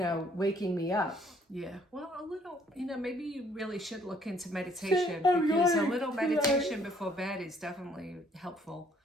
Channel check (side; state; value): both; normal; correlation 0.63